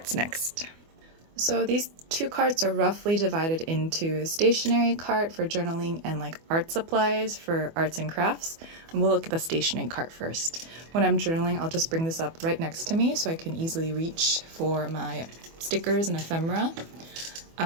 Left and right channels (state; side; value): late; left; 24 ms